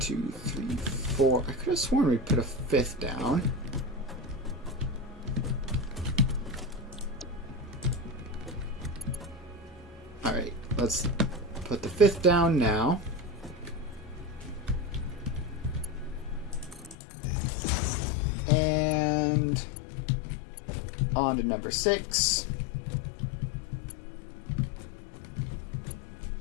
3, 4. I could have sworn we put a 5th down. Alright, let's put the 5th down now. And on to number 6.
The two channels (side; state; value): right; drops out; at 16.9 s